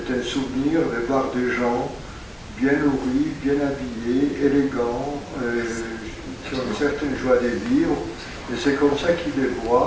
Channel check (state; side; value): identical; both; correlation 1.00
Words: un souvenir de voir des gens bien nourris, bien habillés, élégants, qui ont une certaine joie de vivre, et c'est comme ça qu'il les